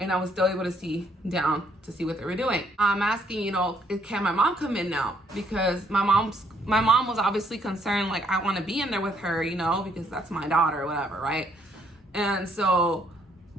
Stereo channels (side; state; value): both; normal; correlation 0.69